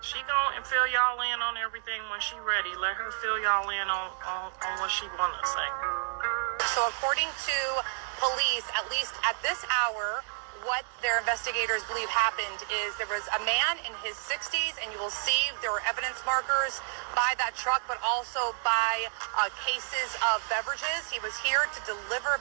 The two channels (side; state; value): left; silent; 58 dB below the other